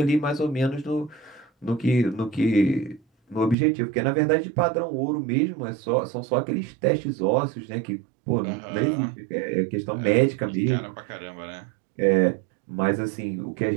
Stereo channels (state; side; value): drops out; left; at 3.6 s